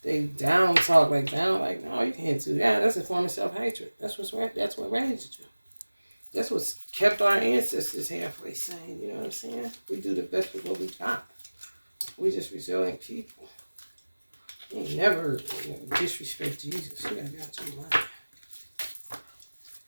they down talk like, no, you can't do that. That's a form of self-hatred. That's what raised you. That's what's kept our ancestors halfway sane. You know what I'm saying? We do the best with what we got. We just resilient people. You ain't never disrespect Jesus. You gotta be out your mind.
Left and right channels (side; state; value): both; inverted; correlation -1.00